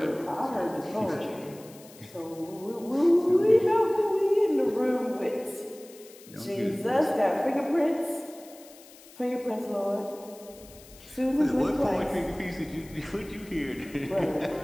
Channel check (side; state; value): left; noise; hiss, 22 dB below the sound